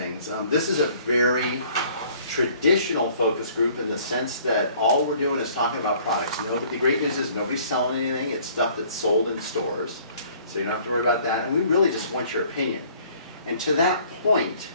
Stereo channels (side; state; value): both; inverted; correlation -0.56